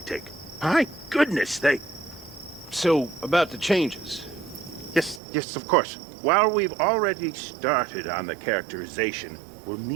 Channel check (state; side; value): drops out; left; at 5.2 s